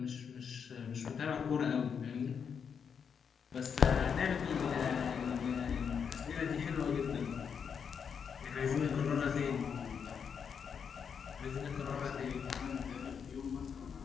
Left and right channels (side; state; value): right; quieter; 6.9 dB